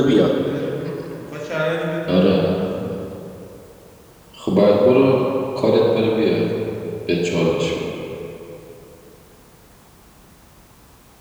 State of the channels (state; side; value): identical; both; correlation 1.00